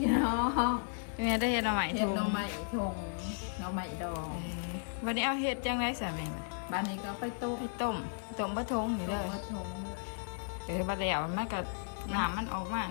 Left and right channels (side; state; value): right; silent; digital silence